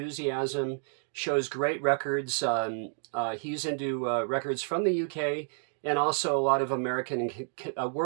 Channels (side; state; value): left; silent; 58 dB below the other